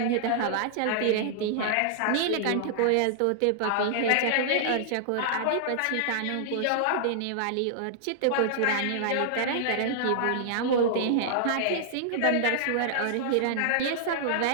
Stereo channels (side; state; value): both; different; correlation -0.01